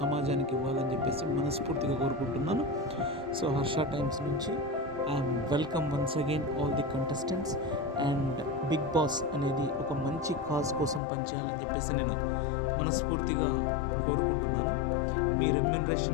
సమాజానికి ఇవ్వాలని చెప్పేసి మనస్ఫూర్తిగా కోరుకుంటున్నాను. సో హర్ష టైమ్స్ నుంచి I'm welcome once again all the contestants. And Bigg Boss అనేది ఒక మంచి కాజ్ కోసం పనిచేయాలని చెప్పేసి నేను మనస్ఫూర్తిగా కోరుకుంటున్నాను. మీ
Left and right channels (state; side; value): drops out; right; at 11.0 s